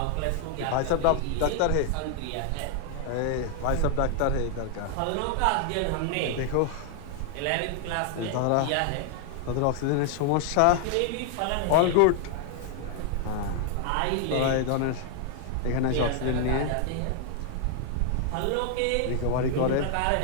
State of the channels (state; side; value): different; both; correlation 0.00